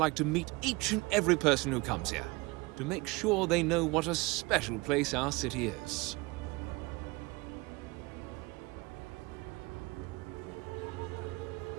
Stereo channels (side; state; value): left; quieter; 24.6 dB